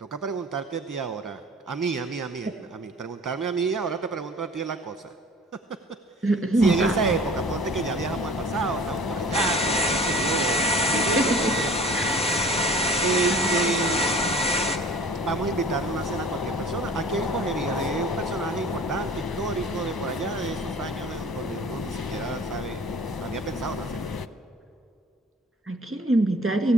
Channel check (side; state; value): both; normal; correlation 0.45